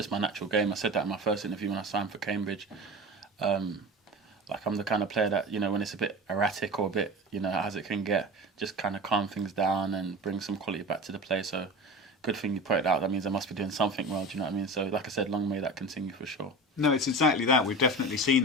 my natural game. I said that in my first interview when I signed for Cambridge. Like I'm the kind of player that, when it's a bit erratic or a bit, as it can get, just kind of calm things down and bring some quality back to the play. So good thing you put it out. That means I must be doing something well, do you know what I mean? So like I said, long may that continue for sure. No, it's exactly that. We've definitely seen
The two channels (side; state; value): both; normal; correlation 0.32